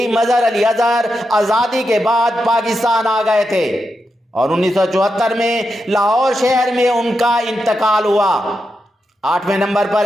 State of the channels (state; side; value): normal; both; correlation 0.87